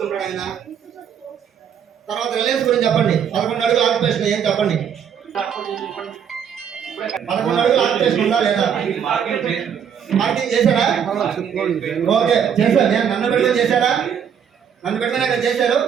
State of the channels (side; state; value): left; quieter; 8.0 dB